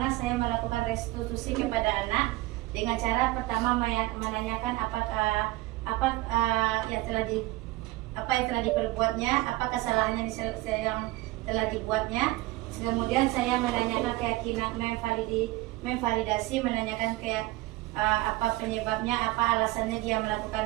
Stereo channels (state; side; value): quieter; left; 19.0 dB